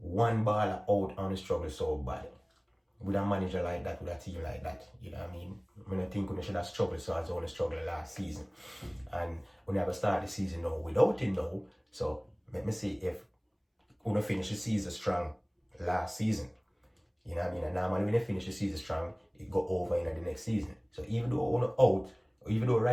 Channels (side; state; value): both; identical; correlation 1.00